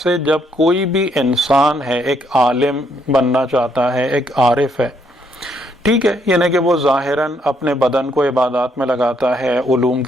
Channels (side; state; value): both; normal; correlation 0.72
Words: جب کوئی بھی انسان ہے، ایک عالم بننا چاہتا ہے، ایک عارف ہے، ٹھیک ہے، یعنی کہ وہ ظاہراً اپنے بدن کو عبادات میں لگاتا ہے، علوم